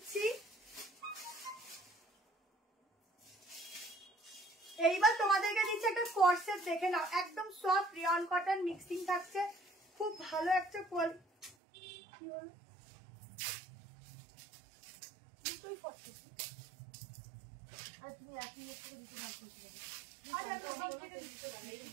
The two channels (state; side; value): drops out; left; at 11.6 s